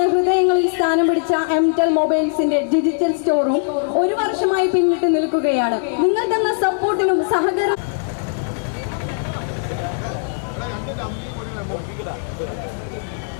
സ്ഥാനം പിടിച്ച എംടെൽ മൊബൈൽസിന്റെ ഡിജിറ്റൽ സ്റ്റോറും 1 വർഷമായി പിന്നിട്ട് നിൽക്കുകയാണ്. നിങ്ങൾ തന്ന സപ്പോർട്ടിനും സഹകരണം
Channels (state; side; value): silent; right; 66 dB below the other